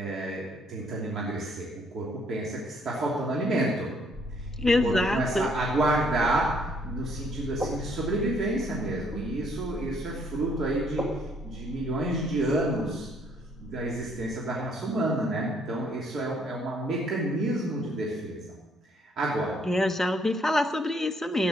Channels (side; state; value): both; normal; correlation 0.66